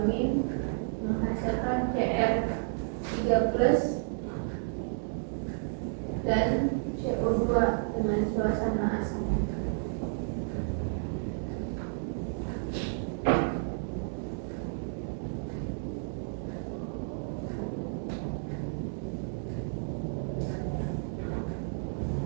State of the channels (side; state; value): left; silent; digital silence